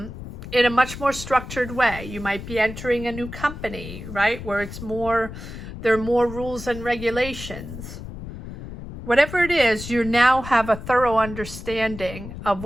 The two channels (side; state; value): left; noise; rumble, 11 dB below the sound